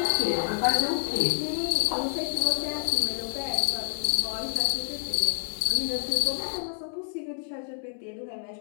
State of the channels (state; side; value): silent; right; digital silence